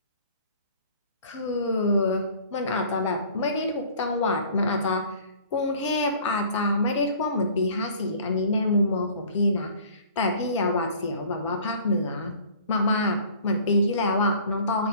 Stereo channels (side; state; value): both; inverted; correlation -0.49